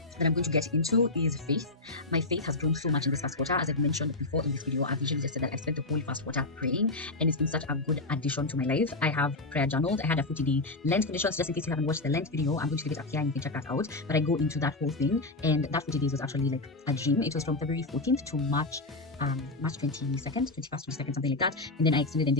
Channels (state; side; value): quieter; right; 3.1 dB